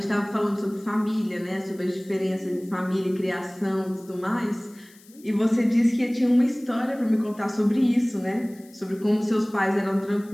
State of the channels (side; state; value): left; noise; hiss, 26 dB below the sound